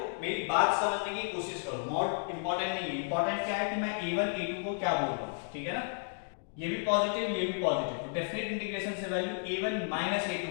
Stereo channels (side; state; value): right; silent; 56 dB below the other